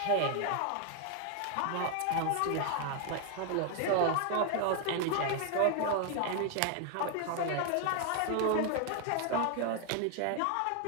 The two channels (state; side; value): different; both; correlation 0.00